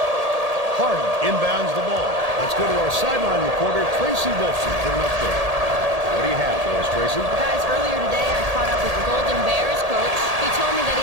Harden inbounds the ball. Let's go to our sideline reporter, Tracy Wilson, for an update. What do you have for us, Tracy? Guys, earlier today I caught up with the Golden Bears coach. He told me that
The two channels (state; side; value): late; left; 1.8 ms